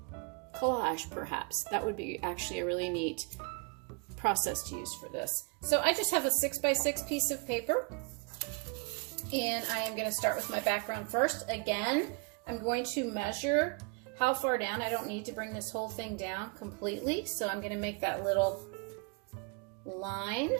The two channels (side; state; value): left; quieter; 33.9 dB